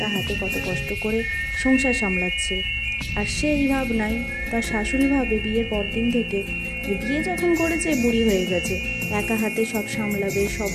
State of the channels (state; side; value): identical; both; correlation 1.00